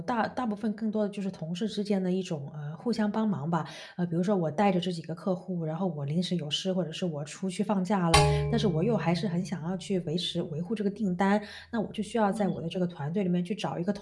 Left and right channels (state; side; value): identical; both; correlation 1.00